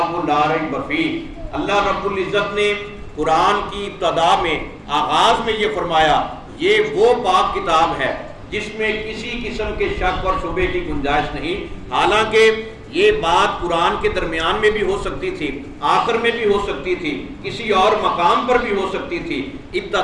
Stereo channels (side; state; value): both; identical; correlation 1.00